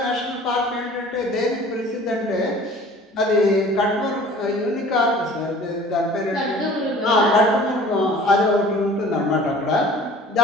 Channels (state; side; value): normal; both; correlation 0.47